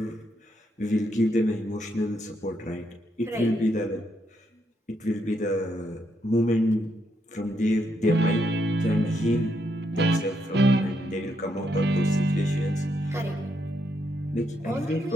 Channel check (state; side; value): normal; both; correlation 0.78